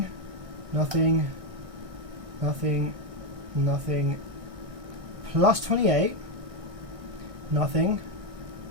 nothing, nothing, nothing, plus 28, nothing,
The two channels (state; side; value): late; left; 1.6 ms